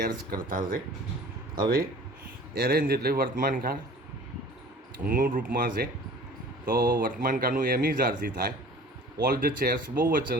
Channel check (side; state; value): both; normal; correlation 0.45